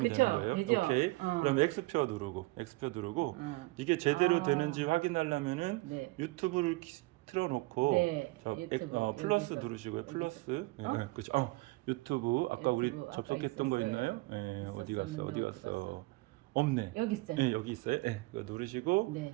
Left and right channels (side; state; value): left; quieter; 23.0 dB